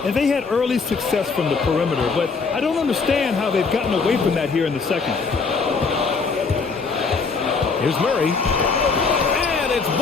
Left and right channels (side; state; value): right; quieter; 4.8 dB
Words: And they had early success from the perimeter, but I don't understand how they've gotten away from that here in the second. Here's Murray. And it's